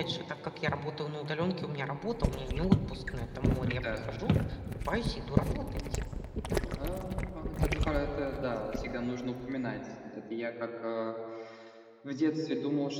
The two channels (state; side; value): identical; both; correlation 1.00